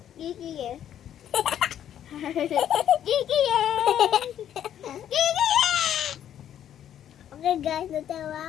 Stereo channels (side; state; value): right; quieter; 10.4 dB